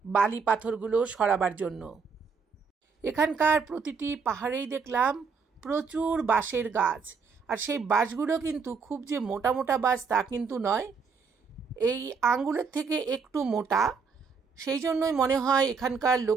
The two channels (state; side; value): quieter; left; 5.5 dB